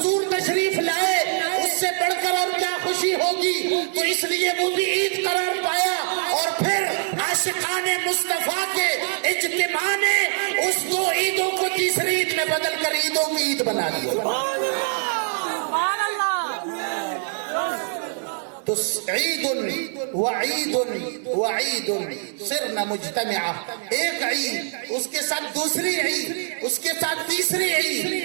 تشریف لائے, اس سے بڑھ کر اور کیا خوشی ہوگی, تو اس لیے وہ بھی عید قرار پایا. اور پھر عاشقان مصطفیٰ کے اجتماع نے اس 2 عیدوں کو تیسری عید میں بدل کر عیدوں کی عید بنا دیا. تو عید وعید وعید صرنا مجتمعا, ایک عید اس کے ساتھ دوسری عید, اس کے ساتھ تیسری عید.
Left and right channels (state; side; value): silent; left; 58 dB below the other